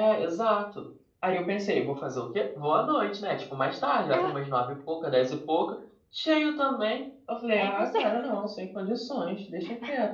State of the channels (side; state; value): both; identical; correlation 1.00